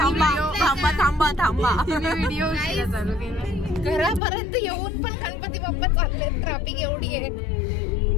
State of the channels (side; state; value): right; drops out; at 4.2 s